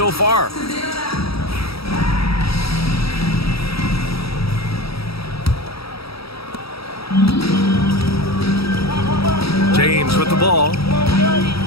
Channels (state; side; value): late; right; 0.76 ms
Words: far. James with the ball.